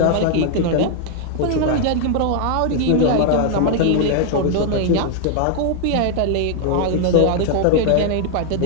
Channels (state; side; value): different; both; correlation 0.00